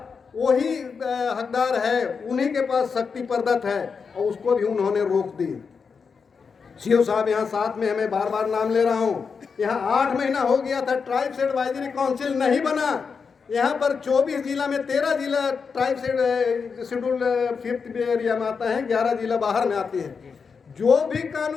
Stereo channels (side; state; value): right; quieter; 5.6 dB